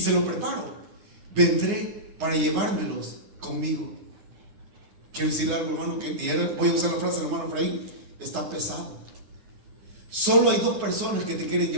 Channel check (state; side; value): late; left; 9.6 ms